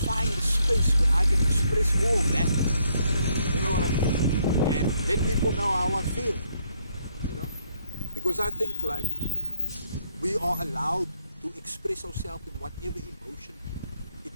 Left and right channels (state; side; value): inverted; both; correlation -0.72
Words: a space where I can express all that. You know what I mean? And let people know how I feel. You know? Because I think like we are allowed to express ourselves in whatever emotion